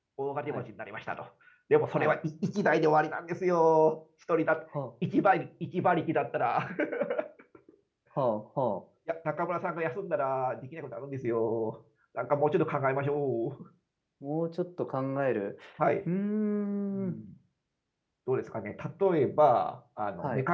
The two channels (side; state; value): both; identical; correlation 1.00